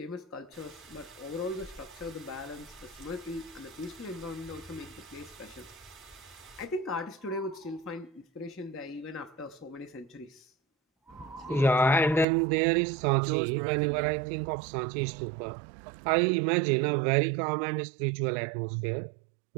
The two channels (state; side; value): drops out; left; at 12.2 s